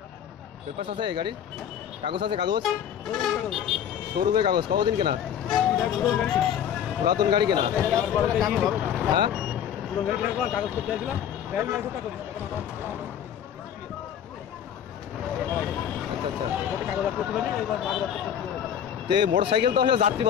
পেপারস আছে গাড়ির? কাগজ আছে? কাগজ শোরুমের কাগজ কতদিন কেনা? পুরাতন গাড়ি কেনা? হ্যাঁ কাগজ করতে আসলাম আচ্ছা আচ্ছা। কাগজ করতে পারি এবার তো এই মোটরসাইকেল তো হলো যাত্রী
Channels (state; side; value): quieter; right; 9.3 dB